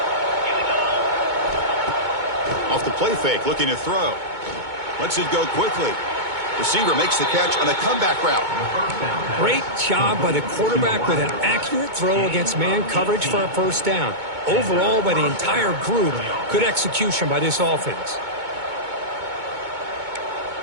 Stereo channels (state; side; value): late; left; 2.2 ms